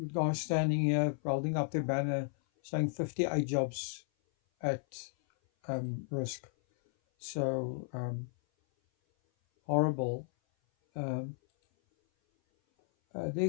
guy standing here holding up the banner saying 58 jobs at risk. So, horrible. Um,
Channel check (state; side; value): silent; right; 55 dB below the other